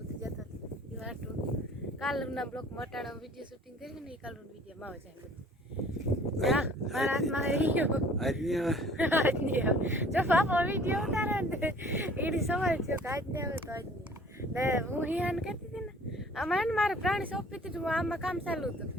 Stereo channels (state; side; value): normal; both; correlation 0.52